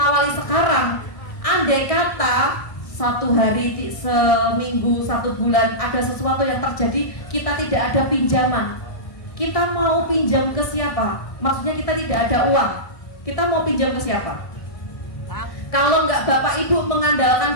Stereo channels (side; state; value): right; late; 1.6 ms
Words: sekarang, andai kata 1 hari, seminggu, 1 bulan ada sesuatu yang terjadi, kita tidak ada pinjaman. Kita mau pinjam ke siapa? Maksudnya kita tidak ada uang. Kita mau pinjam ke siapa? Kalau nggak Bapak Ibu